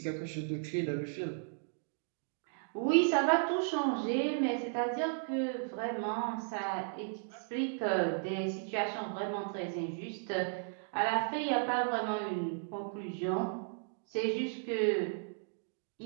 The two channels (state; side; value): silent; left; digital silence